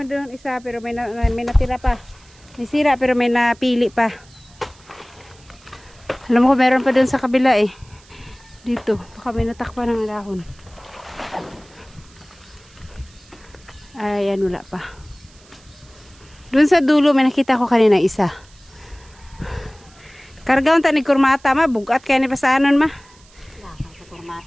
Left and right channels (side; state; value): right; noise; hiss, 27 dB below the sound